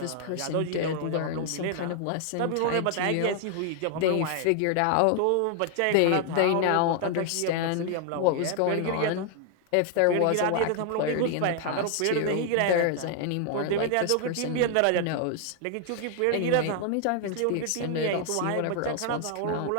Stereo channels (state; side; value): different; both; correlation 0.00